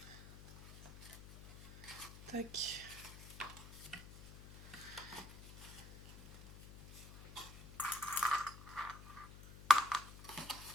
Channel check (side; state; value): left; noise; hum, 15 dB below the sound